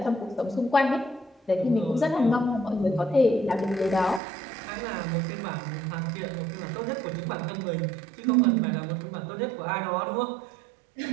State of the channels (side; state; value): left; drops out; at 4.2 s